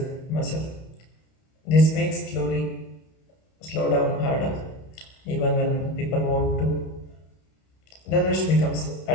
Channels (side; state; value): right; late; 31 ms